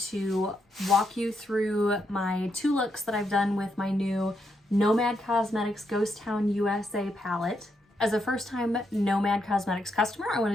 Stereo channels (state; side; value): normal; both; correlation 0.80